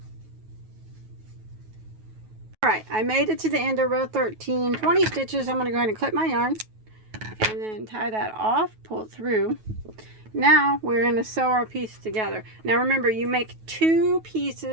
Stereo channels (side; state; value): left; late; 9.3 ms